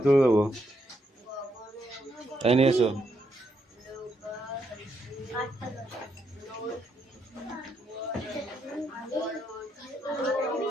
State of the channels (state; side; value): normal; both; correlation 0.78